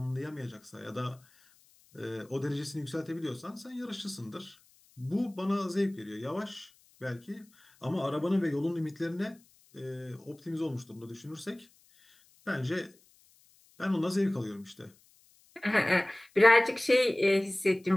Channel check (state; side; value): noise; left; hiss, 30 dB below the sound